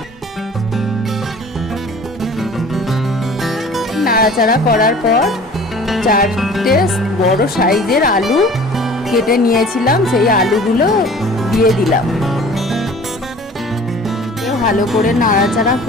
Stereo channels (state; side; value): normal; both; correlation 0.46